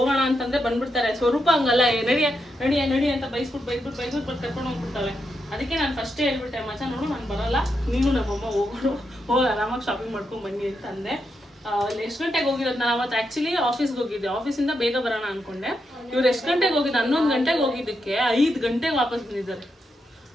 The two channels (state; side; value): normal; both; correlation 0.84